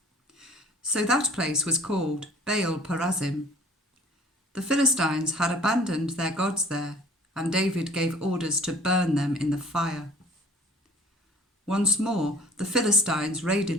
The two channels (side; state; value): both; normal; correlation 0.48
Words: So that place was called Baal-perazim. The Philistines had abandoned their gods there, and David gave orders to burn them in the fire. Once more the Philistines raided